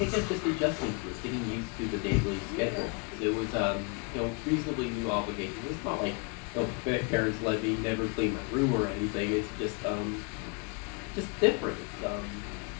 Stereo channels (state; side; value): quieter; right; 31.2 dB